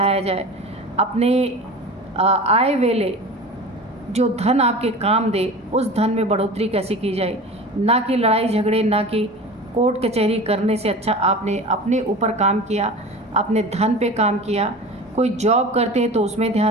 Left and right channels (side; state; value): both; normal; correlation 0.35